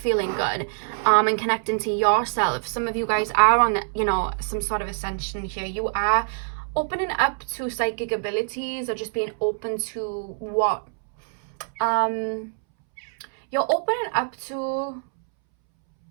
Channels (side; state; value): left; silent; 62 dB below the other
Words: good, and connecting to yourself. Some of you guys are on, you know, some sort of ascension here. You are opening up to psychic abilities, or just being open to what you're opening up to.